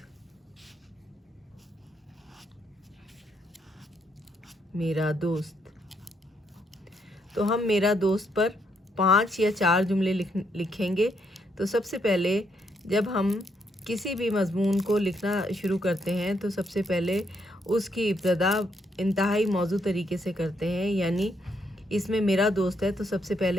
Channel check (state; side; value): normal; both; correlation 0.75